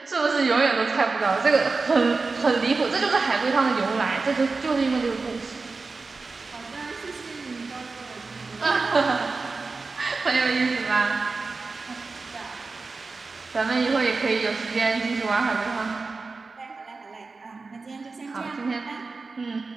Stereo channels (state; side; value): quieter; left; 4.0 dB